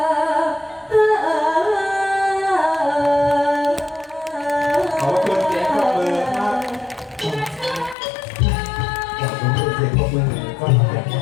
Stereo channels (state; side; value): drops out; right; at 8.0 s